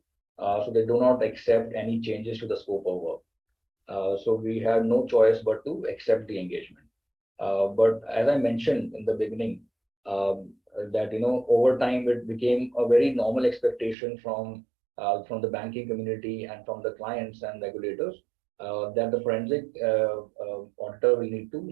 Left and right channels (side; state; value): left; drops out; at 14.0 s